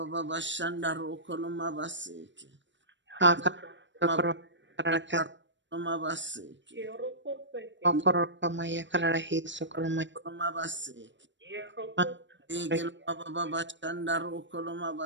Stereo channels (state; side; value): late; left; 0.53 ms